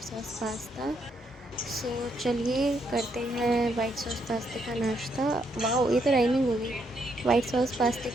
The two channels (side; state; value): both; normal; correlation 0.75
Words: सॉस पास्ता। सो चलिए करते हैं वाइट सॉस पास्ते का नाश्ता। वाह, ये तो राइमिंग होगी। वाइट सॉस पास्ते